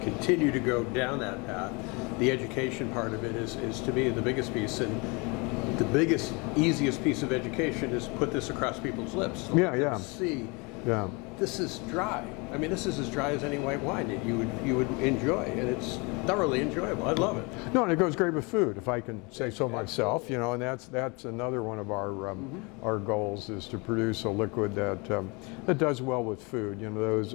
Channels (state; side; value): quieter; right; 29.1 dB